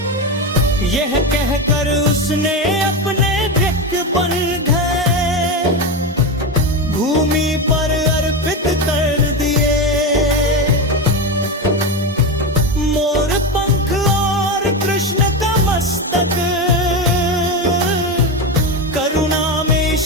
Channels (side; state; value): both; normal; correlation 0.16